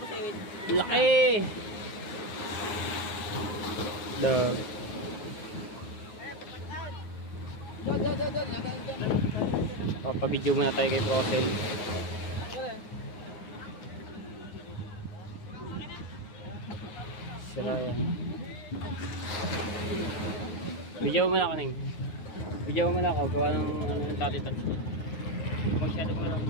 Laki! Dog. Papabidyo muna tayo kay Procel. Sira yan. Bidyo mo na ako, Neng. Bidyo mo na ako. Gawa ng ano, tati-touch ko. Masyado mo lang.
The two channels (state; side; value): late; right; 9.6 ms